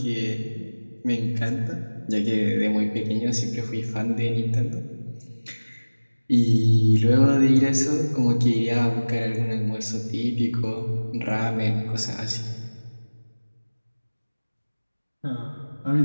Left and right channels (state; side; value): inverted; both; correlation -1.00